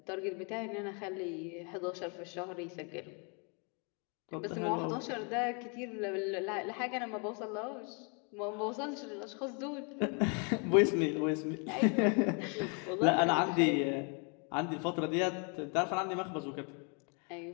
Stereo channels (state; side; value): quieter; right; 36.9 dB